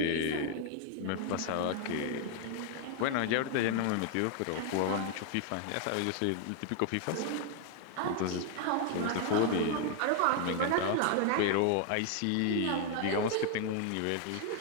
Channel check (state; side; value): different; both; correlation 0.00